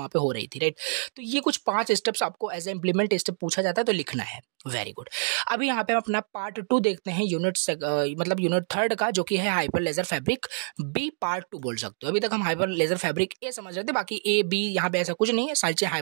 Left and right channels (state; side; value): silent; left; digital silence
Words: पे हो रही थी, राइट। तो ये कुछ 5 स्टेप्स आपको एज ए इम्प्लीमेंट स्टेप पूछा जाता है तो लिखना है। Very good. अभी यहाँ पे हम अपना पार्ट 2 देखते हैं, यूनिट 3 का, जो कि है Hyperledger Fabric B part 2 बोल सकते हो। अभी तक हम हाइपर लेजर फैब्रिक ए समझ रहे थे, बाकी ए बी यहाँ पे ऐसा कुछ नहीं है, सारी